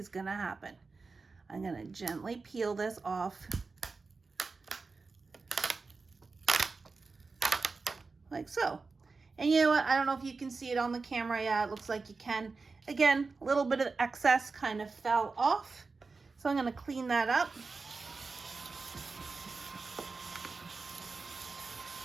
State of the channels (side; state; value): left; quieter; 4.2 dB